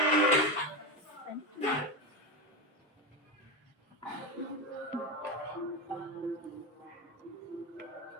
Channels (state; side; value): normal; both; correlation 0.16